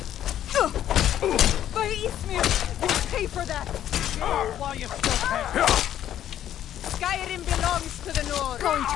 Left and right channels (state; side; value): quieter; right; 11.2 dB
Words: By Eastmere, you'll pay for that. While you still can. Skyrim belongs to the North. Going